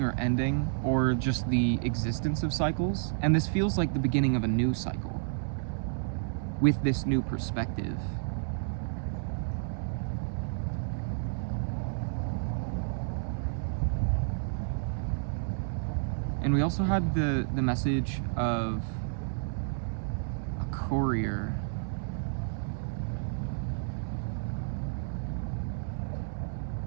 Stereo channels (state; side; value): silent; left; digital silence